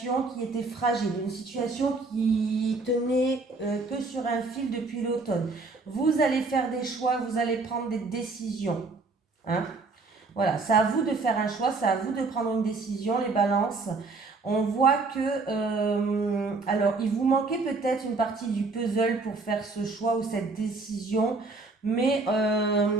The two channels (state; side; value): quieter; left; 3.8 dB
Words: qui était fragile, une situation qui tenait que sur un fil depuis l'automne. Vous allez faire des choix, vous allez prendre des décisions. Hein? Voilà, c'est à vous de faire un choix, c'est à vous de prendre une décision, les balances. On voit que, alors, il vous manquait peut-être une partie du puzzle pour faire ce choix ou cette décision, mais